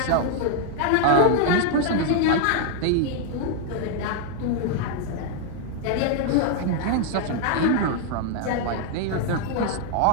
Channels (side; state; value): both; different; correlation 0.00